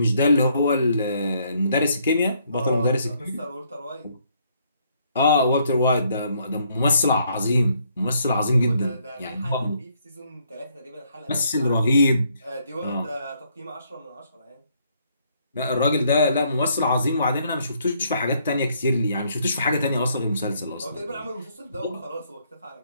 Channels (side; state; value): both; inverted; correlation -0.69